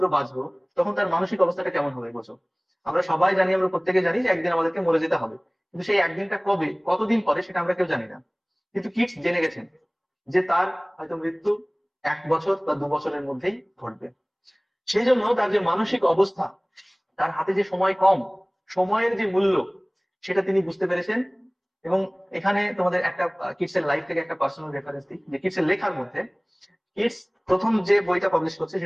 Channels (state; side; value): identical; both; correlation 1.00